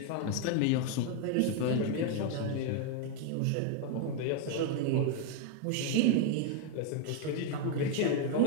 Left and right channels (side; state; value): both; different; correlation 0.01